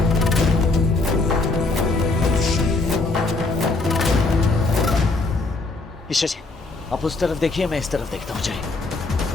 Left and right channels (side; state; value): right; quieter; 3.3 dB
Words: ईशा जी, आप उस तरफ देखिए, मैं इस तरफ देखता हूँ। जाइए।